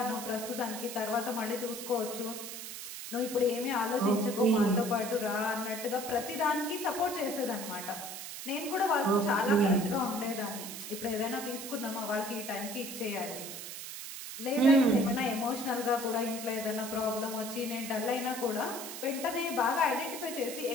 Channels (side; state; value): right; noise; hiss, 9 dB below the sound